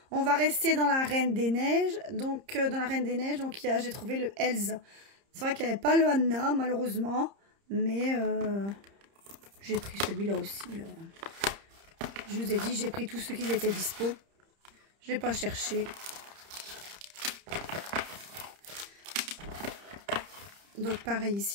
On va rester dans la Reine des Neiges. Donc dans la Reine des Neiges, donc j'ai trouvé le Elsa. C'est vrai qu'il n'y avait pas le Anna malheureusement. Mais j'ai pris celui-là aussi. Je vous ai dit, j'ai pris tous ceux qui étaient dispo. Je n'ai pas cherché. Donc pareil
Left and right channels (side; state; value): left; late; 30 ms